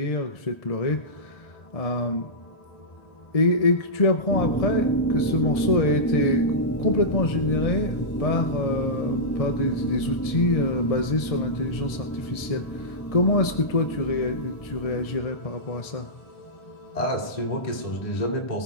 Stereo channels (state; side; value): late; right; 1.7 ms